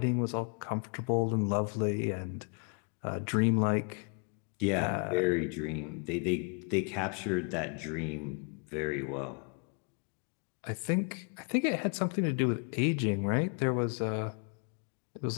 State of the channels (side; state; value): right; quieter; 39.2 dB